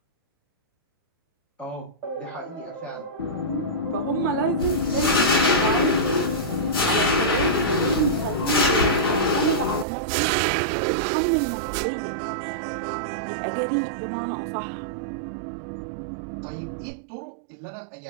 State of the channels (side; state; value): left; drops out; at 9.9 s